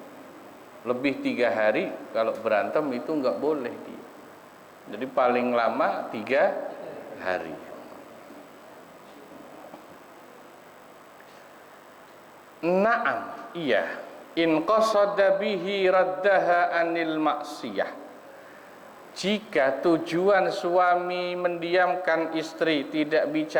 Lebih 3 hari, kalau berantem itu nggak boleh diem. Jadi paling lama 3 hari. Naam, iya. In qasada bihi raddaha anil maksiyah. Jika tujuan suami mendiamkan istri, tidak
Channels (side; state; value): both; identical; correlation 1.00